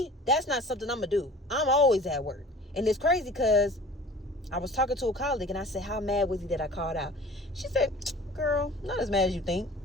that's not something I'm going to do. I'm always at work. And it's crazy because I was talking to a colleague and I said, how mad was he that I called out? She said, girl, not as mad as you think.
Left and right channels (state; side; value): normal; both; correlation 0.44